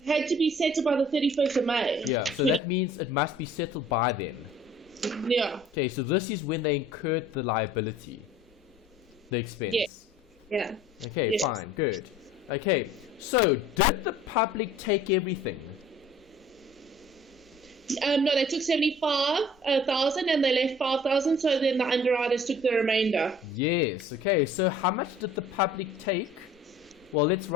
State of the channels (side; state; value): both; normal; correlation 0.50